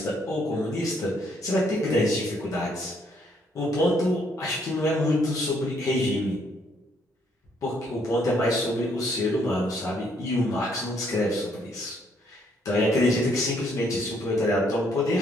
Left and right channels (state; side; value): normal; both; correlation 0.69